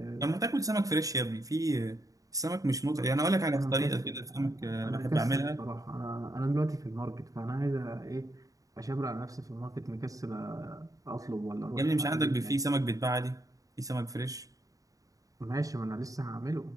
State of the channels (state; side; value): late; left; 0.17 ms